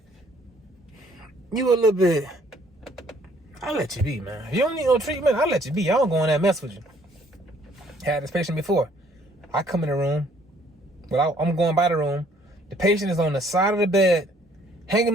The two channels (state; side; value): normal; both; correlation 0.62